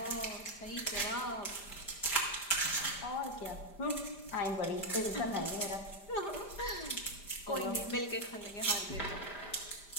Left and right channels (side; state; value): right; late; 5.0 ms